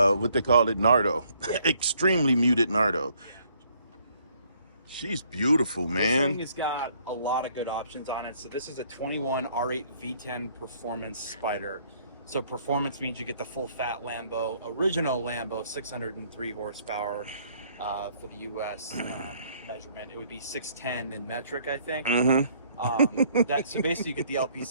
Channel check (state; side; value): inverted; both; correlation -0.64